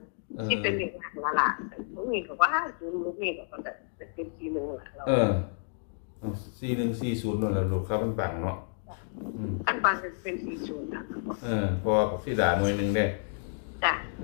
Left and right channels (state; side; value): silent; right; digital silence